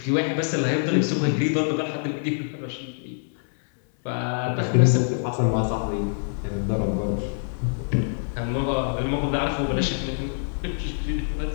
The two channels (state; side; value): silent; right; 62 dB below the other